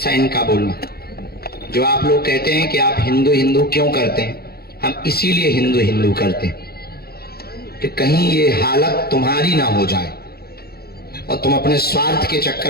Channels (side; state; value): right; late; 0.45 ms